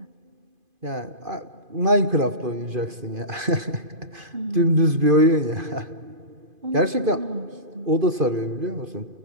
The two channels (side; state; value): left; late; 2.5 ms